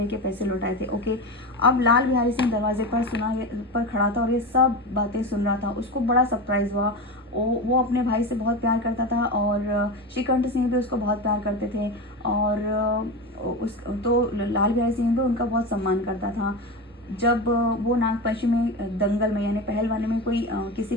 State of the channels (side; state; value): both; normal; correlation 0.22